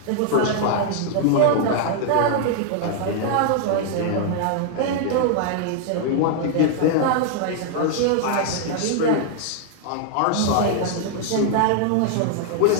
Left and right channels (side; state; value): both; different; correlation 0.00